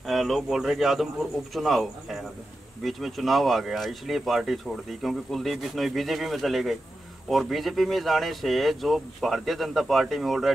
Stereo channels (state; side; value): normal; both; correlation 0.90